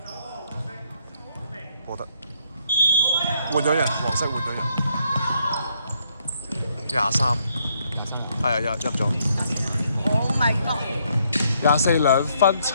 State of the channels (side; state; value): both; inverted; correlation -0.72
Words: 冇得。換咗人，黃色換咗人。23，係啊，入咗。Oh my god！ 242分